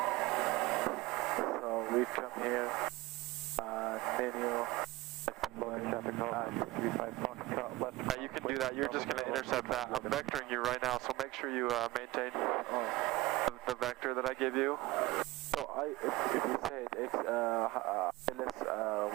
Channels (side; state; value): left; quieter; 19.4 dB